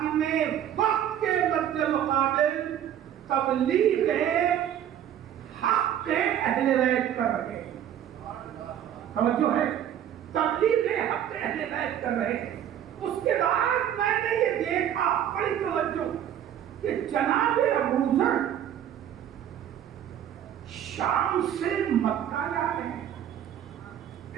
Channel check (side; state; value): left; quieter; 10.3 dB